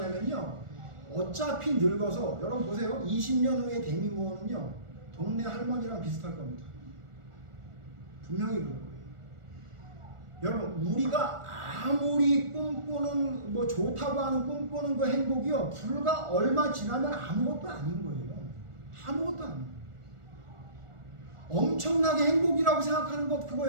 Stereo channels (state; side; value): late; left; 1.4 ms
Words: 어차피 늙어서, 여러분 보세요. 20년 후에 데미 무어는요 동네 할머니랑 비슷할 겁니다. 분명히 그럴 거예요. 여러분, 우리가 아무리 꿈꾸는 뭐 좋다고 하는 꿈꾸는 그 행복이요, 불과 얼마 지나면 아무것도 아닌 거예요. 아무것도 아니에요. 엄청나게 행복이라고 생각하는 것, 그거